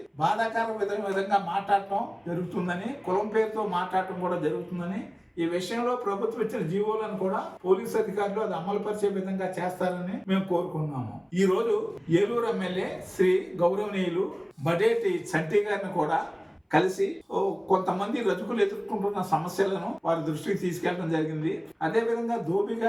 బాధాకర విధంగా మాట్లాడటం జరుగుతుందని, కులం పేరుతో మాట్లాడటం కూడా జరుగుతుందని, ఈ విషయంలో ప్రభుత్వం ఇచ్చిన జీవోలను కూడా పోలీసు అధికారులు అది అమలు పరిచే విధంగా చేస్తారని మేము కోరుకున్నాము. ఈ రోజు ఏలూరు ఎమ్మెల్యే శ్రీ గౌరవనీయులు బడేటి చంటి గారిని కూడా కలిసి కొంతమంది రజకులు ఎదుర్కొంటున్న సమస్యలను వారి దృష్టికి తీసుకెళ్లడం జరిగింది. అదేవిధంగా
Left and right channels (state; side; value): identical; both; correlation 1.00